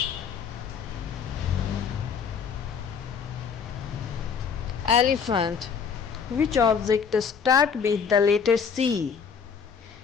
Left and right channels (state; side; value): quieter; right; 6.4 dB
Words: Elephant. Which object start with the letter C?